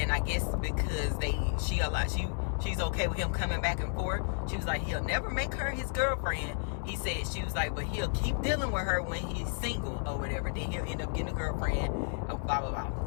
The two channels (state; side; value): silent; right; digital silence